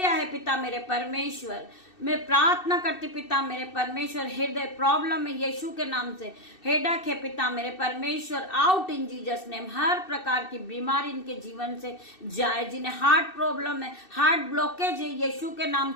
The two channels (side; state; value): right; late; 2.6 ms